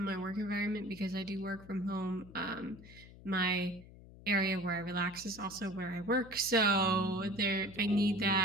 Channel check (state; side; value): noise; left; hum, 19 dB below the sound